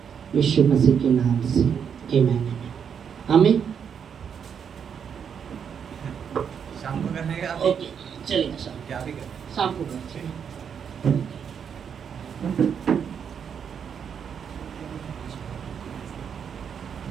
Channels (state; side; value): quieter; left; 7.4 dB